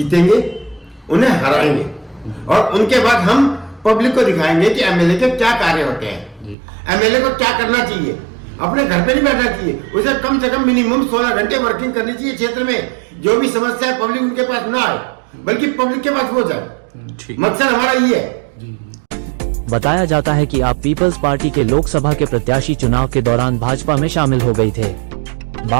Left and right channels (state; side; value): drops out; left; at 6.6 s